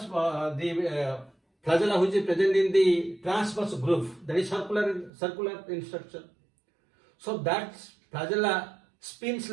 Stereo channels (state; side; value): drops out; left; at 5.1 s